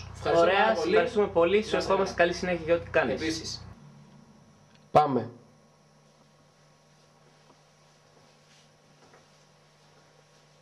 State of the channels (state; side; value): identical; both; correlation 1.00